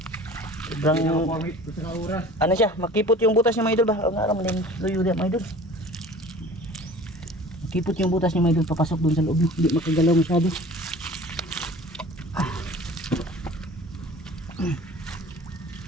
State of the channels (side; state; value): both; normal; correlation 0.44